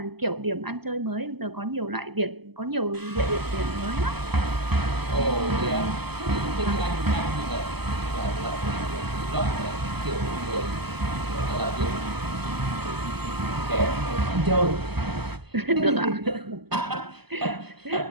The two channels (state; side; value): late; left; 0.97 ms